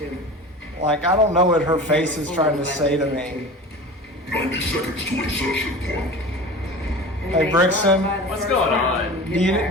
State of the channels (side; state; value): both; normal; correlation 0.35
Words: Like, I don't know what her face is trying to say to me. 90 seconds to insertion point. Hey Brixton, What's going on? do